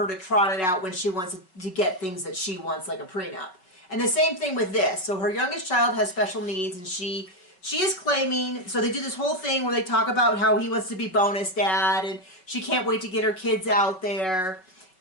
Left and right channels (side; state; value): right; late; 5.4 ms